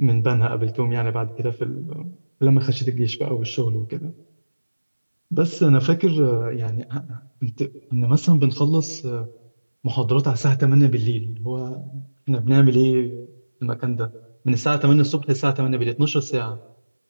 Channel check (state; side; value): inverted; both; correlation -1.00